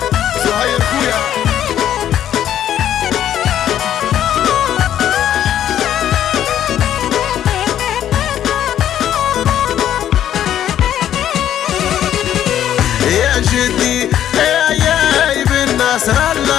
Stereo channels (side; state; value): right; quieter; 10.9 dB